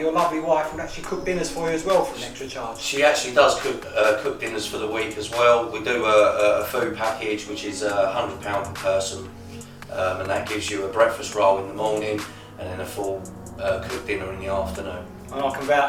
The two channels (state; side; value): identical; both; correlation 1.00